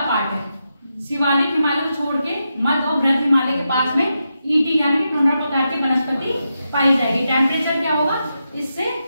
पार्ट है, शिवालिक हिमालय को छोड़ के मध्य और बृहद हिमालय के पास में ईटी यानी कि टुंड्रा प्रकार की वनस्पति पाई जाएगी। टेम्परेचर क्या होगा, इससे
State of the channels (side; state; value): both; inverted; correlation -0.86